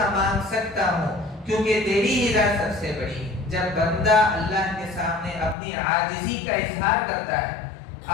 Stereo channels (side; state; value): right; drops out; at 5.6 s